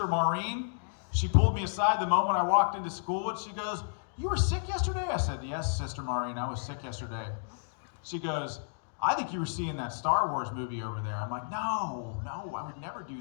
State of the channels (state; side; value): silent; right; digital silence